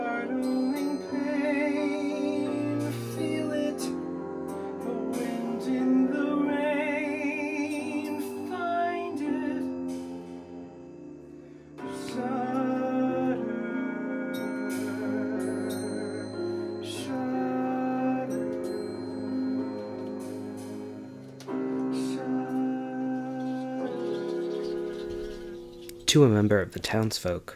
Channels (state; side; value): identical; both; correlation 1.00